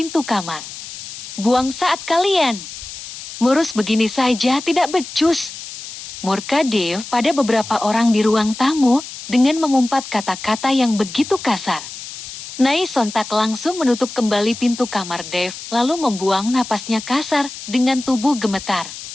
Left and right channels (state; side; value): noise; left; hiss, 12 dB below the sound